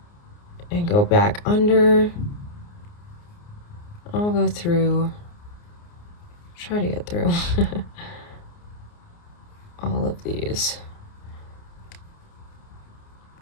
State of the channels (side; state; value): right; late; 29 ms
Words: and go back under. I'll go through, try to get through all of these.